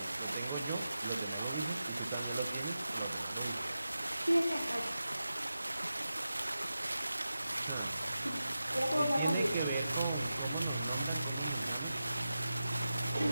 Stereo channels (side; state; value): both; inverted; correlation -0.92